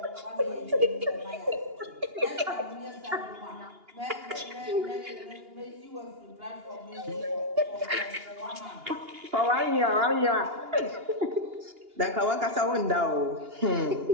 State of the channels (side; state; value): left; late; 2.8 ms